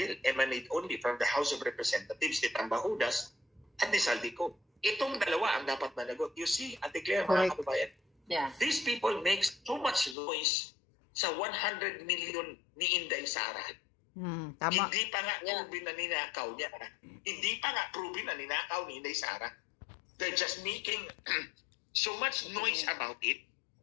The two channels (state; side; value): drops out; right; at 10.2 s